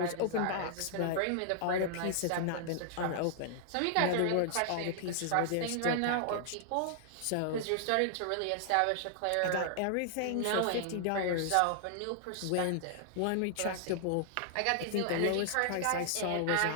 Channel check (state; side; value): different; both; correlation -0.01